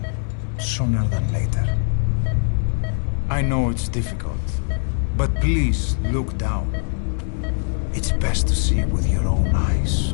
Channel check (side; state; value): right; silent; 64 dB below the other